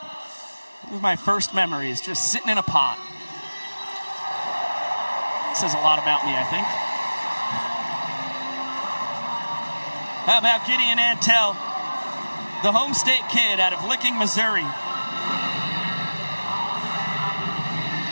It was my first memories, just sitting in a pot. Says a lot about me, I think. How about Gideon Antel, the home state kid out of Licking, Missouri.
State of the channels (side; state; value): both; inverted; correlation -1.00